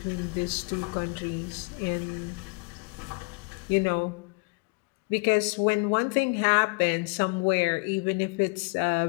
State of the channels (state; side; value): quieter; right; 31.9 dB